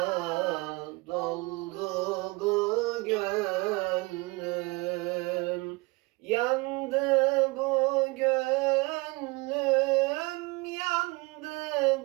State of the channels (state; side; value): quieter; left; 25.2 dB